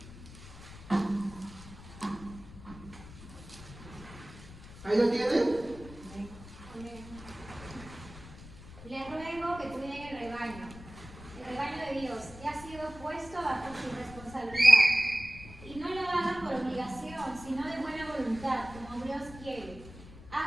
¿Ahí lo tienen? Les ruego que cuiden el rebaño de Dios, que ha sido puesto bajo su responsabilidad. Y no lo hagan por obligación, sino de buena voluntad, como Dios quiere.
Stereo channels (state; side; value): noise; left; rumble, 16 dB below the sound